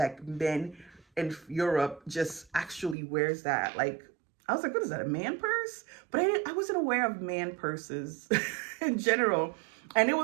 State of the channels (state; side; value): drops out; left; at 3.0 s